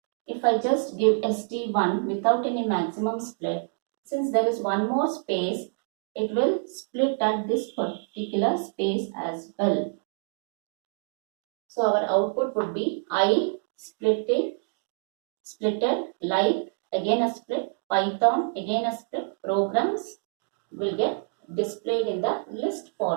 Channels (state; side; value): silent; left; 60 dB below the other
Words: if I just give ST1 without any maximum split, since there is one more space, it will split at this particular space as well. So our output would be I splitted, like again a split, Python again a split, programs will get displayed in the list